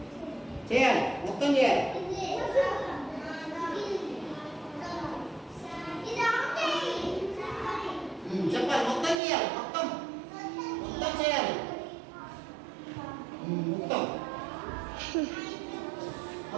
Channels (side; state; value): left; drops out; at 9.2 s